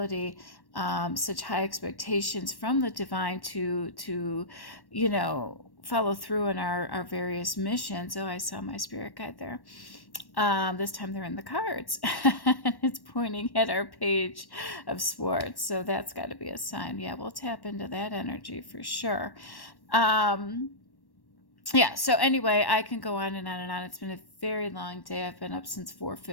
such high expectations from the divine to follow through in our various missions. Oh, I saw my spirit guide there. This time they're in the cards. And it's pointing at our page of Swords. So that's got to be a sign. Yeah, we'll tap into that energy for sure. Yeah, so anyway, I can go on and on and on. It's been a very long day. I've been up since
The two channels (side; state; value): right; late; 1.1 ms